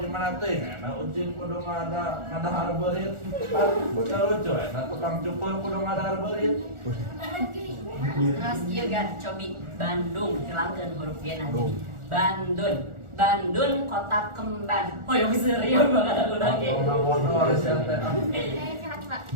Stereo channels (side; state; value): left; late; 1.4 ms